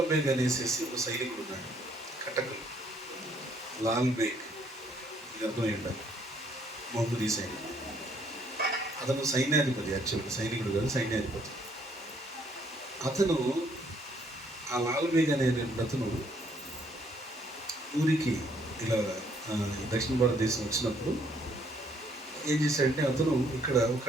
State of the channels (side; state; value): both; normal; correlation 0.66